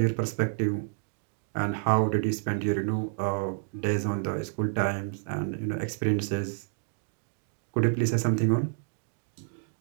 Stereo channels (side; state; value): left; silent; digital silence